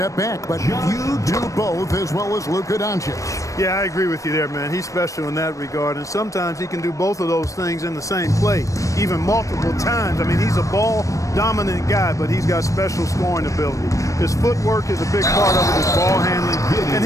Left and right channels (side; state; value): right; late; 0.16 ms